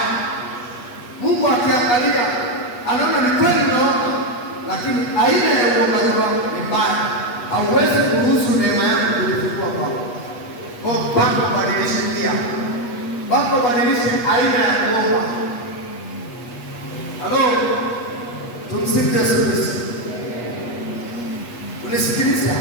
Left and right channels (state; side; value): late; right; 8.3 ms